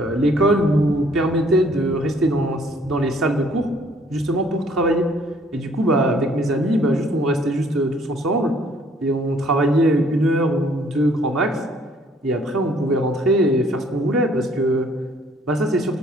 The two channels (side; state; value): both; normal; correlation 0.61